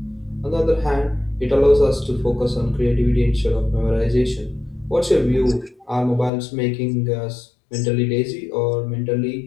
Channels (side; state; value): right; drops out; at 6.3 s